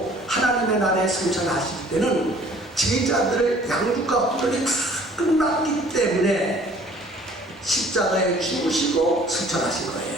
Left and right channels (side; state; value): both; normal; correlation 0.53